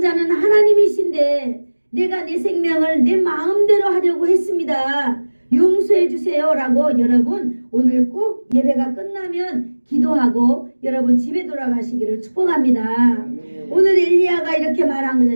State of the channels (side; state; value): both; inverted; correlation -1.00